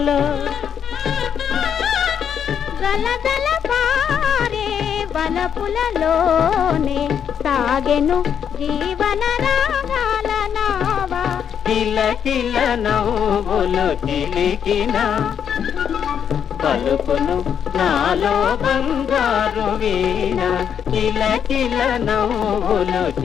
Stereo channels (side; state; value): right; quieter; 8.2 dB